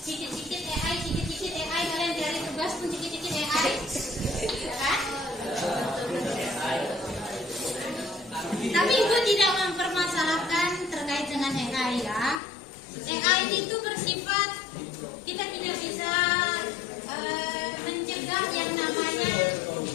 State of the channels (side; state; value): right; drops out; at 12.4 s